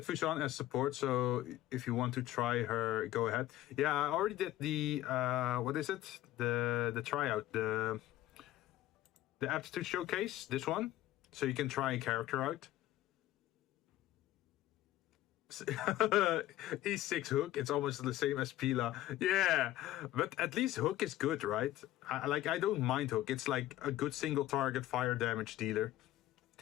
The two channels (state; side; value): quieter; right; 14.4 dB